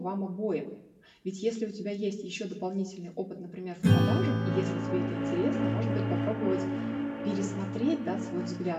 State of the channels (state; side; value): identical; both; correlation 1.00